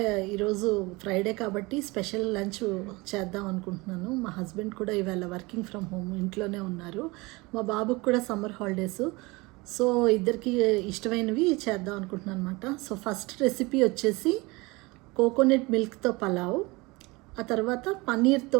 ఈరోజు ఫ్రైడే కాబట్టి స్పెషల్ లంచ్ చేద్దాం అనుకుంటున్నాను. మా హస్బెండ్ కూడా ఇవాళ వర్కింగ్ ఫ్రమ్ హోమ్ ఇంట్లోనే ఉన్నారు. మా బాబుకి కూడా సమ్మర్ హాలిడేస్. సో ఇద్దరికి ఇష్టమైనవి చేద్దాం అనుకుంటున్నాను అనమాట. సో ఫస్ట్ రెసిపీ వచ్చేసి కోకోనట్ మిల్క్తో పలావ్, ఆ తర్వాత పన్నీర్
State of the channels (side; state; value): left; quieter; 24.1 dB